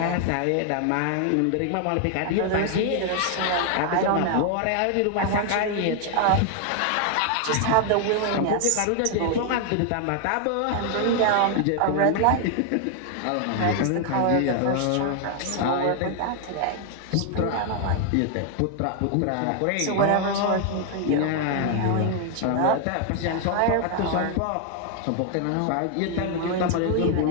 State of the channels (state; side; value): different; both; correlation 0.00